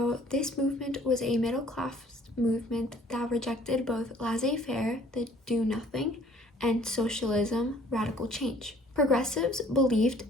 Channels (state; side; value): normal; both; correlation 0.56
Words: this movement was a middle class movement that rejected both laissez-faire, the do nothing, and socialism, radical change. Progressives